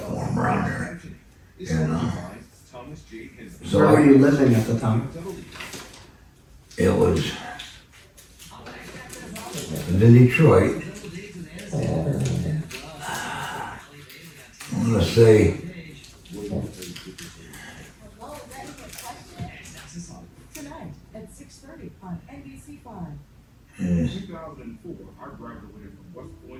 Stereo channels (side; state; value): both; identical; correlation 1.00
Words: for them around there. And so Where were you living at the time? it was in Detroit. I'm gonna say Tonight at 6:30 on NBC5.